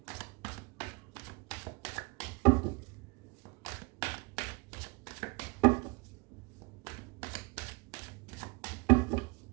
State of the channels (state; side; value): quieter; left; 29.1 dB